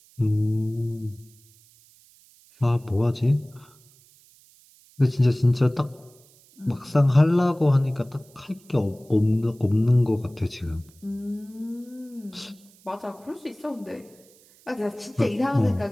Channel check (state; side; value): noise; right; hiss, 28 dB below the sound